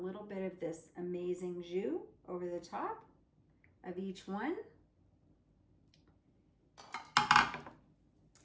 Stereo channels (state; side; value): identical; both; correlation 1.00